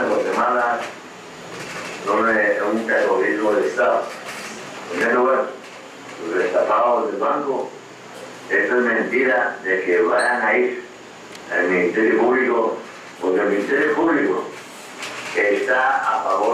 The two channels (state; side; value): identical; both; correlation 1.00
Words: Guatemala un terrorismo de Estado. En primer lugar, los destapados del banco, eso es mentira de que vayan a ir al Ministerio Público, porque el Ministerio Público está a